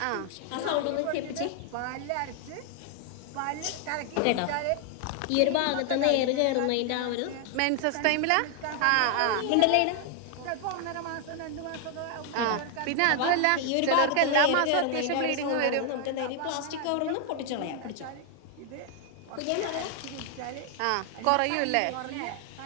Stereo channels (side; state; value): both; different; correlation 0.00